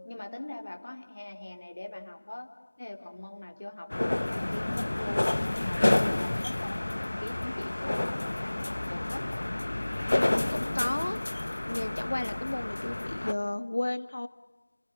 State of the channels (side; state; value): both; inverted; correlation -1.00